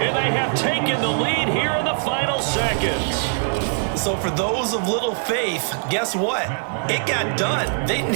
they have taken the lead here in the final seconds. So for those of little faith, guess what? It got done. They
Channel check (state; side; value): silent; left; digital silence